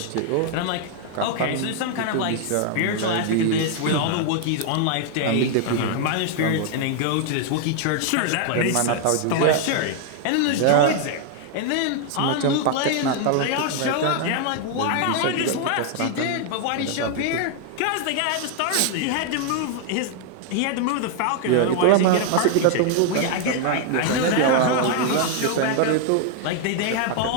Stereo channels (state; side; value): different; both; correlation 0.00